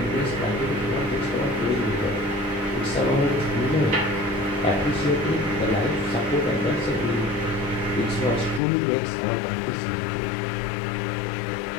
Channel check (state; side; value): drops out; right; at 8.6 s